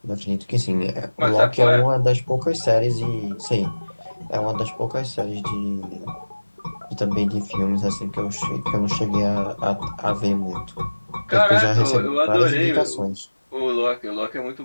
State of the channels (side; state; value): both; inverted; correlation -1.00